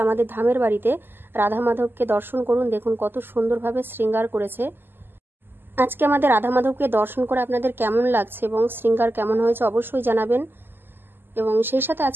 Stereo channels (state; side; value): late; left; 0.097 ms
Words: ধামের বাড়িতে রাধা মাধবকে দর্শন করুন। দেখুন কত সুন্দরভাবে শৃঙ্গার করেছে। আজকে আমাদের রাধা মাধবকে দর্শন করে আপনাদের কেমন লাগছে এবং শৃঙ্গার কেমন হয়েছে অবশ্যই জানাবেন। এবং সেই সাথে